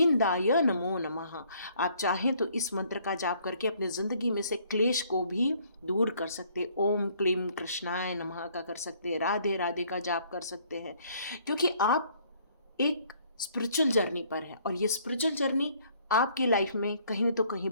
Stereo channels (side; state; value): both; inverted; correlation -0.62